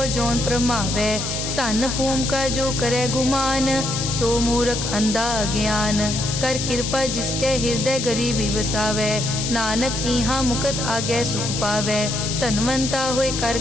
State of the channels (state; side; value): noise; left; hiss, 4 dB below the sound